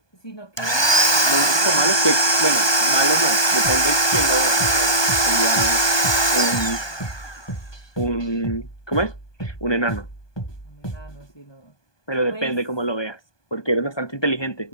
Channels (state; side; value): late; right; 1.2 ms